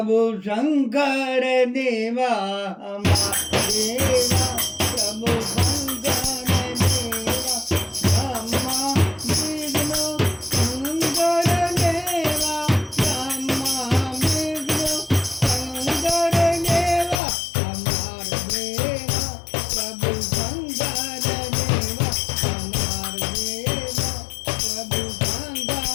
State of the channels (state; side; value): drops out; right; at 17.2 s